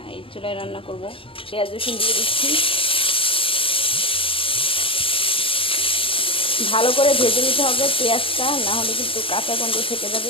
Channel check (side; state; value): right; late; 0.26 ms